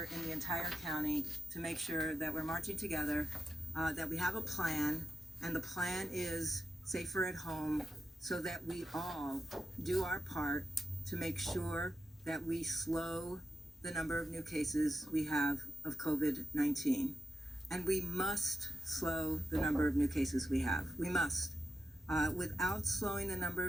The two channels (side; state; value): both; normal; correlation 0.89